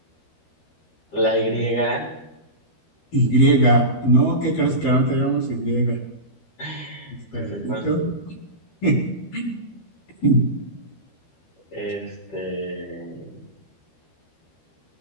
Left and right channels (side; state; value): right; late; 13 ms